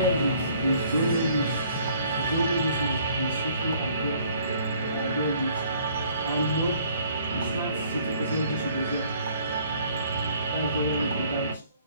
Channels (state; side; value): inverted; both; correlation -0.59